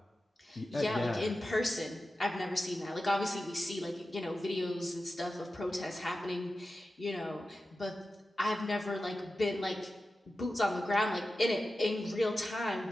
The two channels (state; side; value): normal; both; correlation 0.93